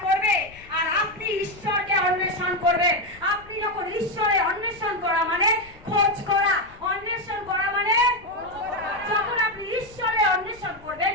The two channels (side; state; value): left; noise; rumble, 22 dB below the sound